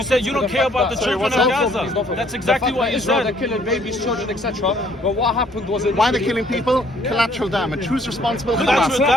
said you don't care about the children of Gaza. That's exactly what you said. They're killing babies, children, etc. But what happened was... Why they're killing people? Collateral damage. Who's responsible for Collateral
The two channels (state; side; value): normal; both; correlation 0.62